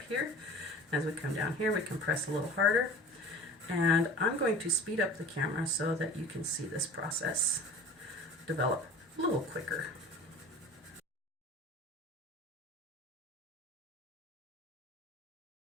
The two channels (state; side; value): normal; both; correlation 0.41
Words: here. As we come down here, we can press a little harder. And I'm going to speed up the camera so that you can see this process develop a little quicker.